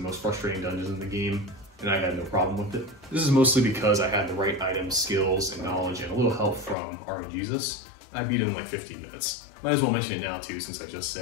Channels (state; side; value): drops out; right; at 6.8 s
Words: most frustrating dungeons in the game, and I had no problem with it. This is mostly because I had the right items, skills, and knowledge, and a little help from RNGesus. I beat it in like 15 minutes. Might as well mention it now too, since I just